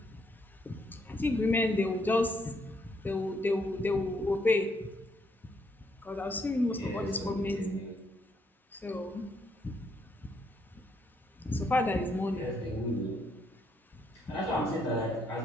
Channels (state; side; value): normal; both; correlation 0.73